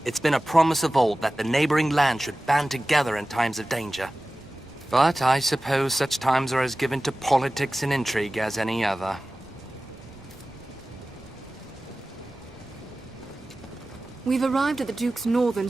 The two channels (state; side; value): normal; both; correlation 0.96